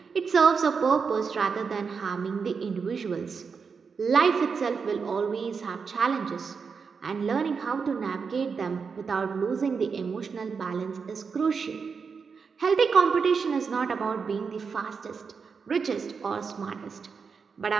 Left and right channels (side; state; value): left; quieter; 5.6 dB